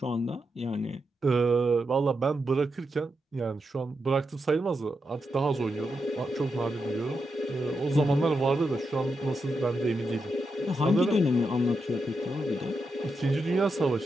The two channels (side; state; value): both; normal; correlation 0.86